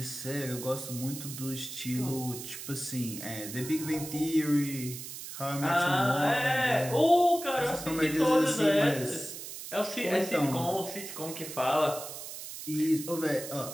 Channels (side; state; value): right; noise; hiss, 10 dB below the sound